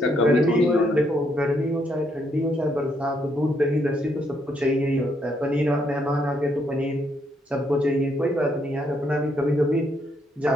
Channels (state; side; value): normal; both; correlation 0.74